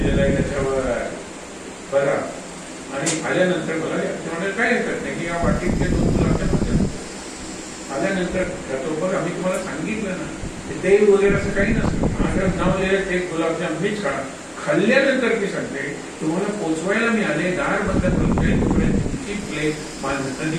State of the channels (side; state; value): both; identical; correlation 1.00